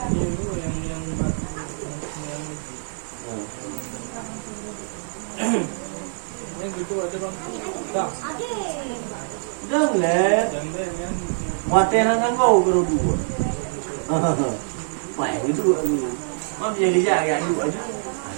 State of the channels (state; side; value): silent; left; digital silence